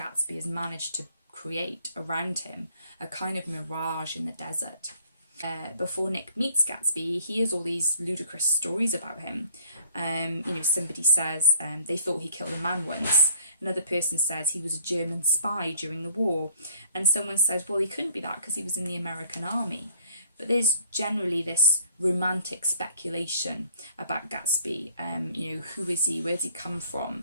has managed to create around him, a kind of mirage in the desert. Before Nick meets Gatsby, he hears all these ludicrous stories about him. Somebody says they thought he killed a man once. Another person says he was a German spy during the war. And someone says, well, he couldn't be that because he was in the American army. But there's generally this romantic speculation about Gatsby. Who is he? Where does he come from?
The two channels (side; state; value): both; inverted; correlation -0.58